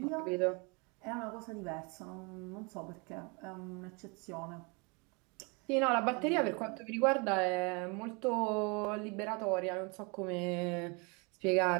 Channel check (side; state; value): left; quieter; 30.8 dB